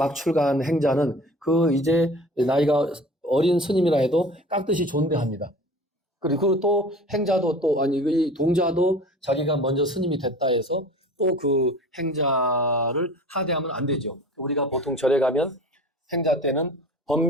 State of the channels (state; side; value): normal; both; correlation 0.41